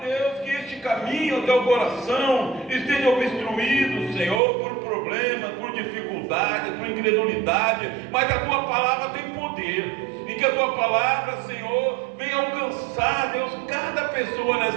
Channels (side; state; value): left; drops out; at 4.4 s